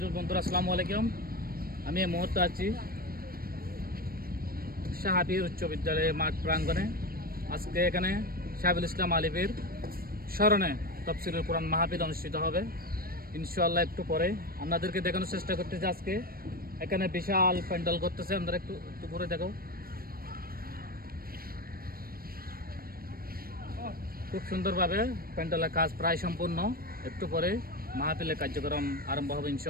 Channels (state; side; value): late; left; 0.43 ms